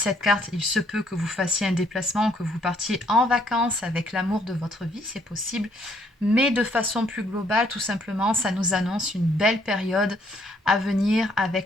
carte, il se peut que vous fassiez un déplacement, que vous partiez en vacances avec l'amour de votre vie, c'est possible. Mais de façon plus globale, tout simplement, ça nous annonce une belle période à venir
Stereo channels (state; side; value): normal; both; correlation 0.66